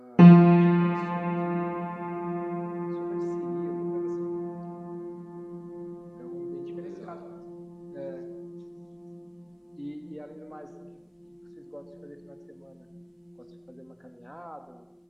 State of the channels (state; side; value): identical; both; correlation 1.00